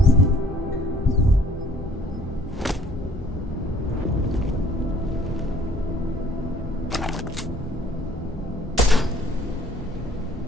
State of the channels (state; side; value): normal; both; correlation 0.57